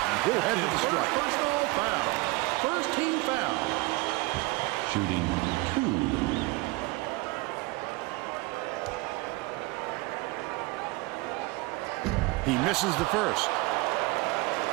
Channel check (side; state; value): left; quieter; 23.2 dB